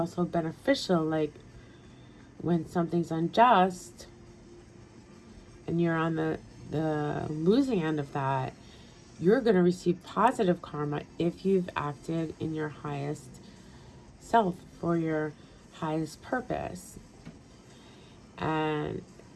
beneficial. Like when something's unjust and you're on the losing end of that, you're going to receive positive karma if you've acted in your highest self for your highest purpose. And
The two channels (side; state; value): both; identical; correlation 1.00